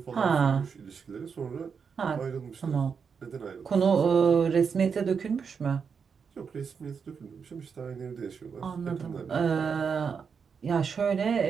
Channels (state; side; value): quieter; left; 6.2 dB